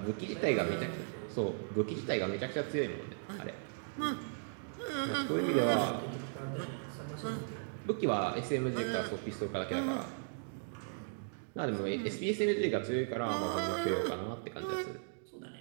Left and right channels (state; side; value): silent; left; digital silence